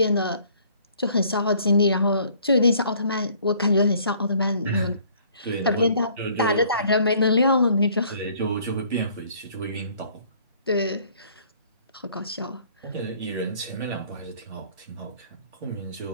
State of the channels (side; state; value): both; inverted; correlation -0.58